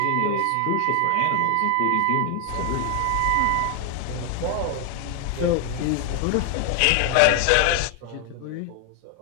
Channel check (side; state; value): both; different; correlation 0.00